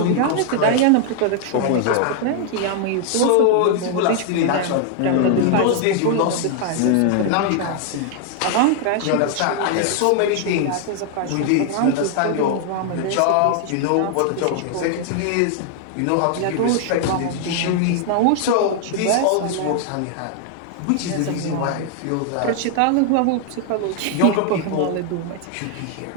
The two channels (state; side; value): different; both; correlation 0.00